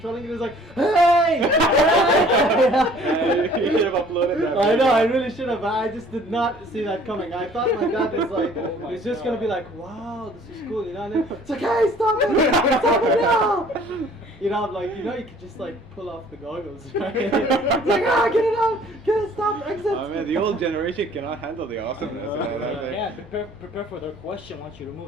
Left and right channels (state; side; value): normal; both; correlation 0.54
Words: it, he was like, hey! You should have uploaded that. I know, I really should have, but I just did not see that coming. I thought my dad was like, he's just gonna be like, wow, this is cool, you know, and then it's like, hey, stop it! Stop it now! You know, I'm like, you know, you could just like pull off the goggles, right? It's like, get it out! Get it, stop, exit! I mean, the old generation cannot handle the awesomeness. Yeah, prepare for their question once you